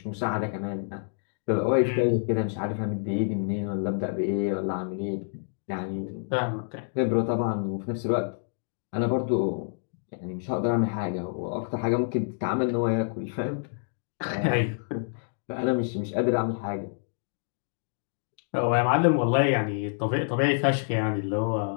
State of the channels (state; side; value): silent; right; digital silence